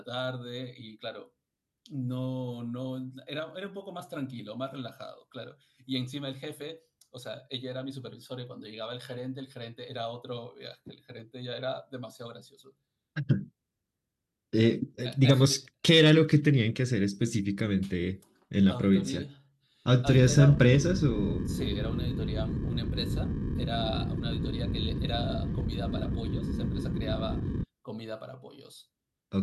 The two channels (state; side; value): identical; both; correlation 1.00